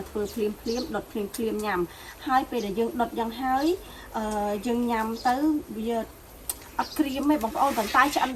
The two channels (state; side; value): identical; both; correlation 1.00